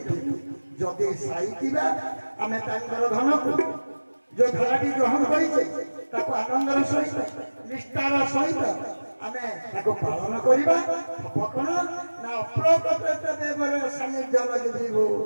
जदि साईतीबा आमे तांकर धन को जो धाराटी ग्रहण करिछे ताको आनंदर सहित निष्ठार सहित आमे ताको पालन करिबा अपकण ना अप्रकट देवर सानिध्य लगिबो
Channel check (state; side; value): inverted; both; correlation -1.00